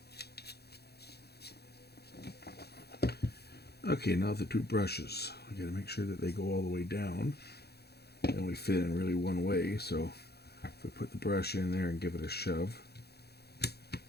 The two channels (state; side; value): late; right; 0.47 ms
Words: Okay, now the two brushes. I got to make sure that they go all the way down. They only fit in really one way, so if we put the brush in there and give it a shove, it